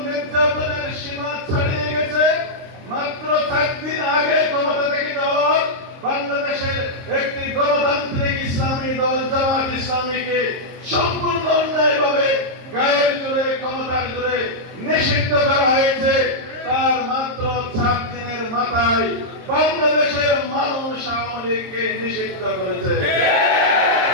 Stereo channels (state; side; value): late; left; 23 ms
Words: নির্যাতনের সীমা ছাড়িয়ে গেছে, মাত্র 4 দিন আগে ক্ষমতা থেকে যাওয়ার বাংলাদেশের একটি গণতান্ত্রিক ইসলামী দল জামাত ইসলামীকে সম্পূর্ণ অন্যায়ভাবে গায়ের জোরে, ক্ষমতার জোরে নিষিদ্ধ করা হয়েছে। তার মাত্র 4 দিনের মাথায় বাংলাদেশের মানুষ আওয়ামী লীগকে নিষিদ্ধ করেছে।